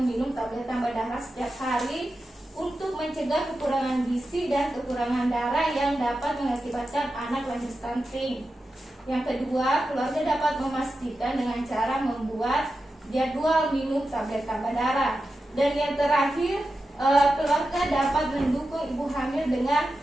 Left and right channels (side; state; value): both; normal; correlation 0.91